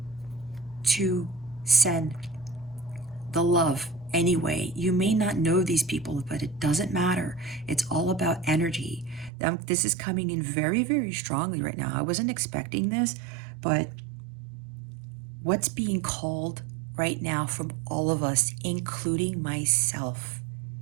to send the love anyway. You may not know these people, but it doesn't matter. It's all about energy. This is coming in very, very strongly right now. I wasn't expecting this, but what's being called right now from all of us, including myself,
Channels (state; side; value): drops out; left; at 9.3 s